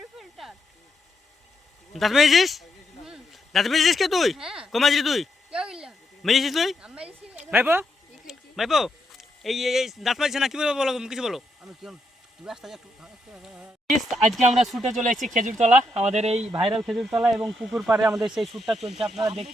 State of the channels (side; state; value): both; normal; correlation 0.79